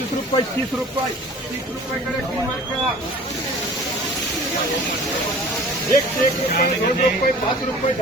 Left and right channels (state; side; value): normal; both; correlation 0.45